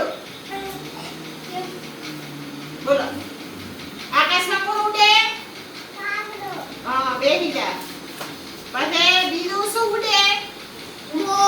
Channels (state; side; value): identical; both; correlation 1.00